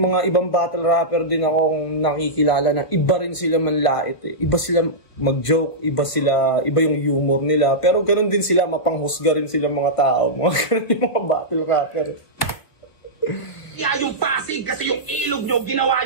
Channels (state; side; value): late; right; 1.7 ms